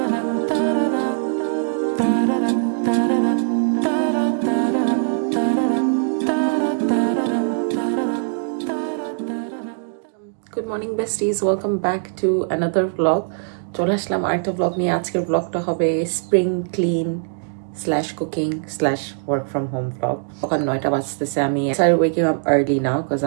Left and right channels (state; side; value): silent; left; digital silence